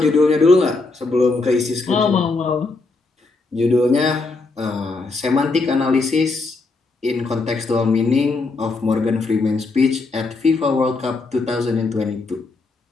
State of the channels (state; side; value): quieter; right; 3.7 dB